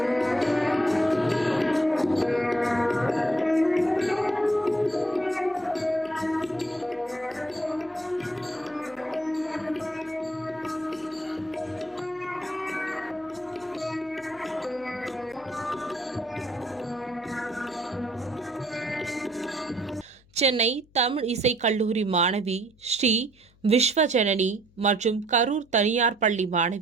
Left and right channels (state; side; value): noise; left; hum, 30 dB below the sound